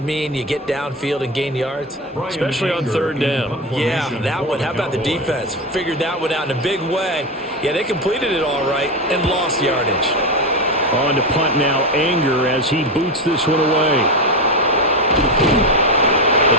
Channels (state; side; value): normal; both; correlation 0.17